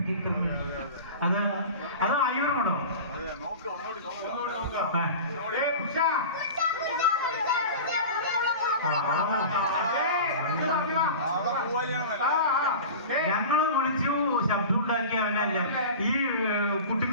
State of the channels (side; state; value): both; inverted; correlation -0.33